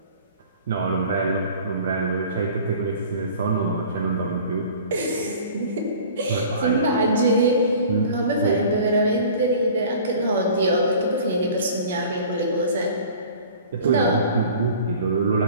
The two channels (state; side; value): inverted; both; correlation -0.45